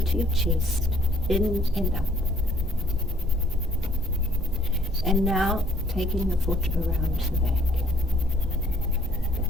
to your chest, in and up. And now taking the foot around to the back.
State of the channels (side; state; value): both; normal; correlation 0.62